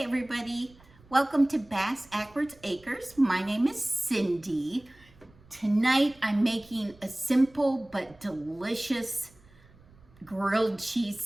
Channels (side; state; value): right; noise; rumble, 27 dB below the sound